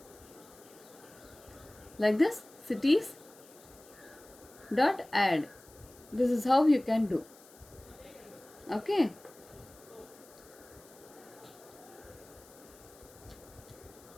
like this, cities dot add. This is how you can do. Okay.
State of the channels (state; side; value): noise; left; hiss, 23 dB below the sound